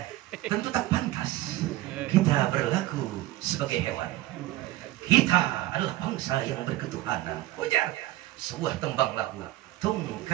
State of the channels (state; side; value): quieter; left; 16.4 dB